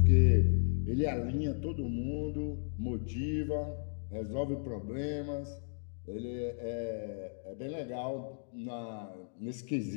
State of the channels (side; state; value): right; silent; digital silence